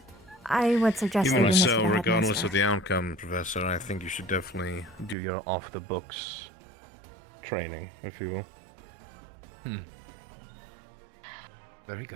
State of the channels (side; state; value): left; drops out; at 5.2 s